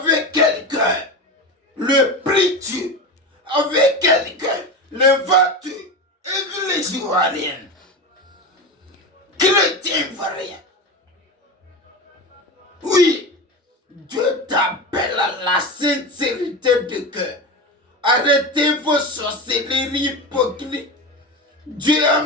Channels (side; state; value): both; normal; correlation 0.23